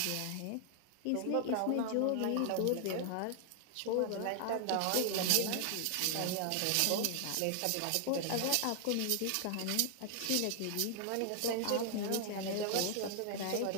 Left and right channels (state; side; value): different; both; correlation 0.00